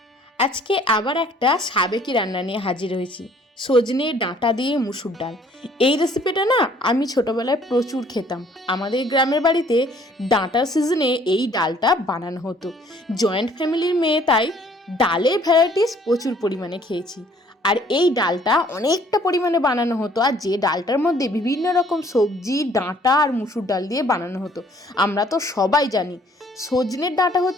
আজকে আবার একটা সাবেকি রান্না নিয়ে হাজির হয়েছি, সজনে ডাঁটা দিয়ে মুসুর ডাল। এই রেসিপিটা না আমি ছোটোবেলায় প্রচুর খেতাম। আমাদের গ্রামের বাড়িতে ডাঁটার সিজনে এই ডালটা বানানো হতো। জয়েন্ট ফ্যামিলির মেয়ে, তাই ডালের ভ্যারাইটিস প্রচুর পরিমাণে খেয়েছি। আর এই ডালটা অনেকটা পরিমাণে বানানো হতো, আর যে ডালটার মধ্যে বিভিন্ন রকম সবজি, ডাঁটা আর মুসুর ডাল দিয়ে বানানো হতো। আমরা তো সবাই জানি সজনের ডাঁটা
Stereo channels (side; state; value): both; normal; correlation 0.59